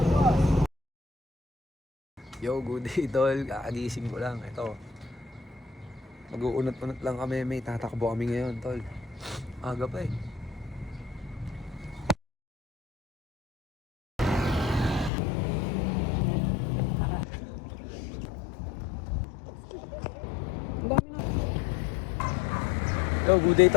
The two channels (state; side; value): drops out; right; at 15.1 s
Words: Yo, good day tol. Kakagising ko lang. Ito. Mag-uunot-unot lang kami. May tatakbo kami ngayon tol. Aga pa eh. Yo, good day